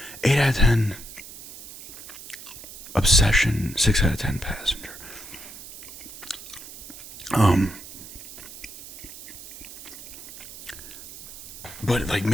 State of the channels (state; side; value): noise; right; hiss, 15 dB below the sound